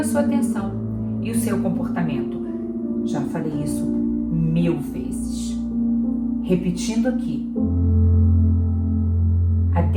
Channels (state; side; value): identical; both; correlation 1.00